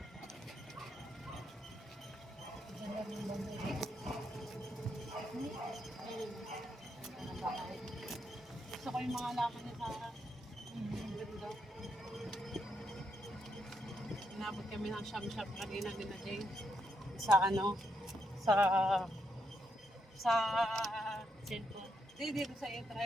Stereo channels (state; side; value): normal; both; correlation 0.79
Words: Gusto ko yung mga laman niya sa ganda. Inabot kami ng sham-sham kanina din na Jane. Sa ano? Sa Cellphone. dito sa